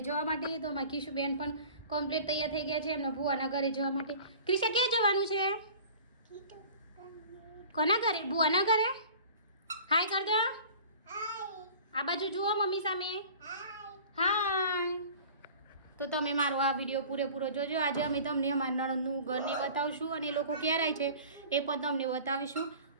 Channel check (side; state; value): both; inverted; correlation -0.43